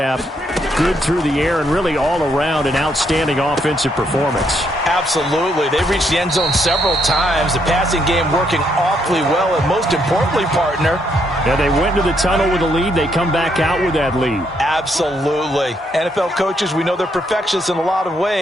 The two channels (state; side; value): normal; both; correlation 0.74